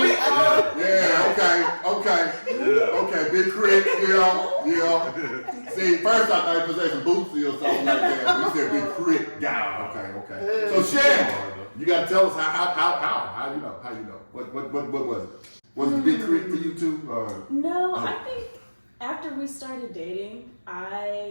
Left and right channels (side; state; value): both; inverted; correlation -1.00